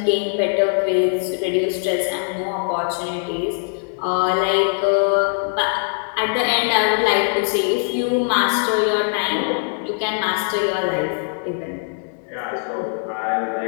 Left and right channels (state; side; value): silent; right; 64 dB below the other